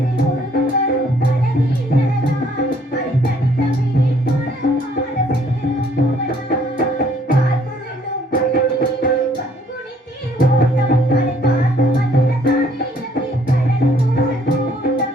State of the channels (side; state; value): both; normal; correlation 0.63